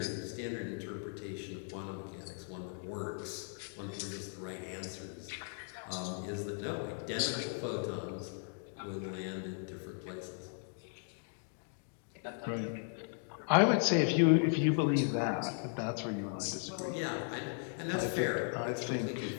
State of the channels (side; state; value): right; silent; 53 dB below the other